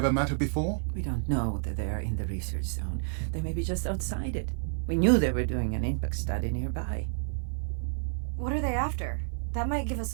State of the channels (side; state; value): left; silent; 58 dB below the other